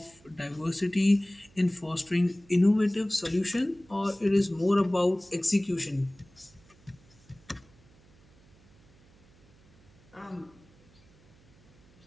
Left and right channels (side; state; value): right; noise; hum, 28 dB below the sound